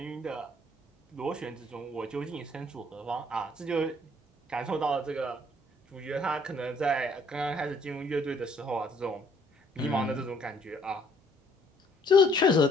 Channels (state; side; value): normal; both; correlation 0.62